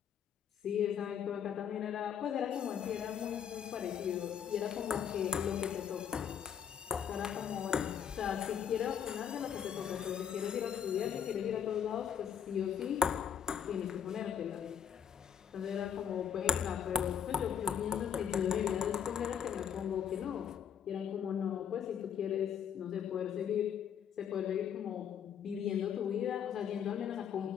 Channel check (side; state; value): right; quieter; 8.4 dB